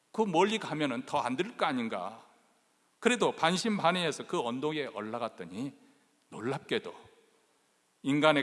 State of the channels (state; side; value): identical; both; correlation 1.00